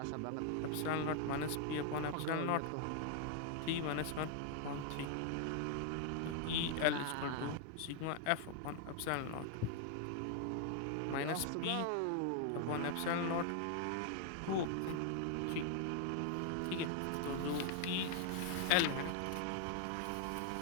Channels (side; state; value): both; different; correlation 0.00